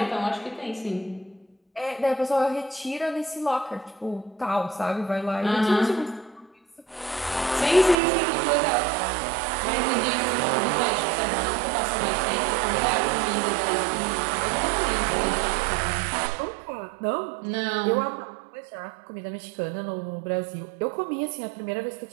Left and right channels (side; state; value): left; drops out; at 8.0 s